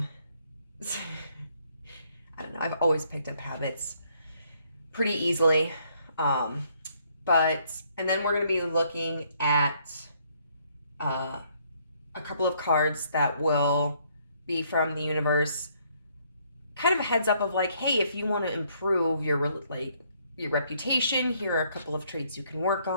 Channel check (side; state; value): both; inverted; correlation -0.68